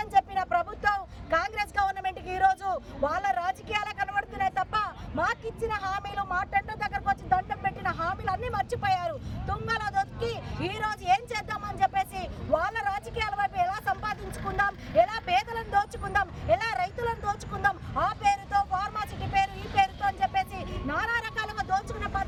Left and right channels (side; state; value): both; identical; correlation 1.00